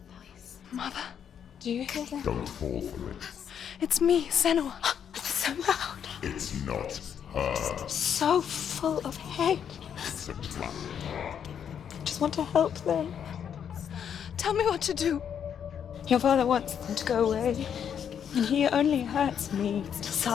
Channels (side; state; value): right; quieter; 8.3 dB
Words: voice? Mother, do you hear that? Don't fall for it. It's me, Senua. It's so loud. It's not her. So full of hate. It's a trap. I just want to help them. Tell me what to do. Your father wants them to go away, and he only hurts me to